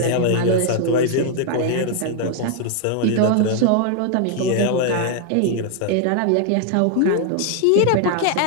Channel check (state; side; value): different; both; correlation 0.00